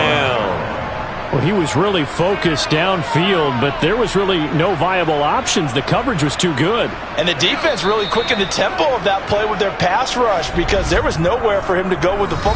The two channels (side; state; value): both; identical; correlation 1.00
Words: Well, he was really focused downfield, but there was really no viable options. The coverage was too good. And the defense really quickened the tempo of that play with their pass rush because there was nowhere for him to go with the